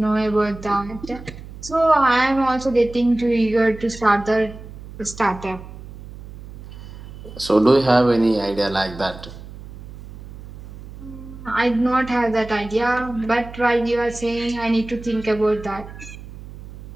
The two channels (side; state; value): right; noise; hum, 15 dB below the sound